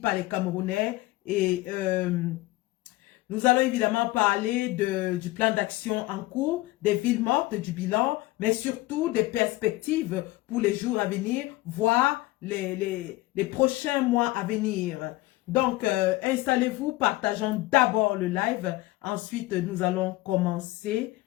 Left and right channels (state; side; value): quieter; right; 19.0 dB